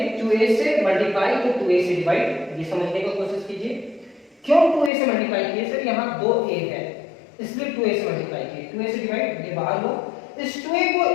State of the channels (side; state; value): right; drops out; at 4.9 s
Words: 2a से मल्टीप्लाई तो 2a से डिवाइड, ये समझने की कोशिश कीजिए। क्यों 2a से मल्टीप्लाई किए, सर यहाँ 2a है इसलिए 2a से मल्टीप्लाई किए, 2a से डिवाइड, ये बाहर लो, इस 2a को